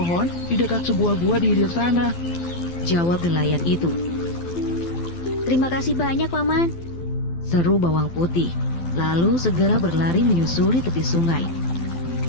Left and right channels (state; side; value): late; right; 12 ms